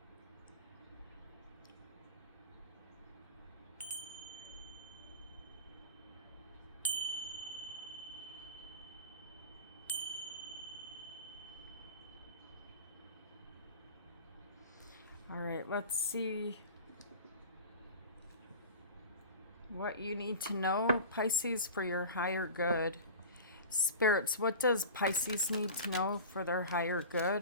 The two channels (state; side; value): inverted; both; correlation -0.35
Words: all right, let's see what you need to know, Pisces, for your higher good. Spirits, what does Pisces need to know for their higher